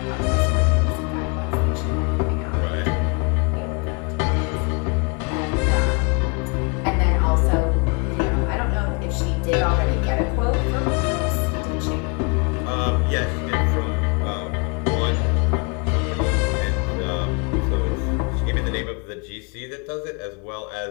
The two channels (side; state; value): right; quieter; 32.4 dB